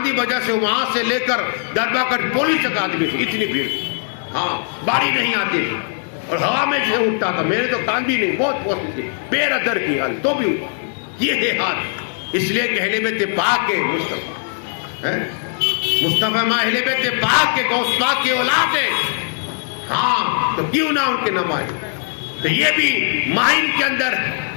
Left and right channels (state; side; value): silent; right; 61 dB below the other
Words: وجہ سے، وہاں سے لے کر درگاہ کر پولیس تک آدمی تھی، اتنی بھیڑ، ہاں باری نہیں آتی تھی اور ہوا میں سے اٹھتا تھا، میرے تو کان بھی نہیں، بہت پوچھتی تھی، بے ادر کی حال تو بھی اٹھا، یہ ہے ہاتھ، اس لیے کہ اہل بیت پاک کے مصطفیٰ مصطفیٰ ماں اہل بیت پاک کے غوث پاک کی اولاد ہے، ہاں تو کیوں نہ ان کے نماز۔ تو یہ بھی ماہین کے اندر